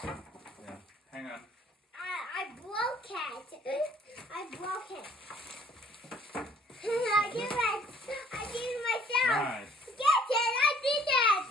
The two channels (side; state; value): both; normal; correlation 0.58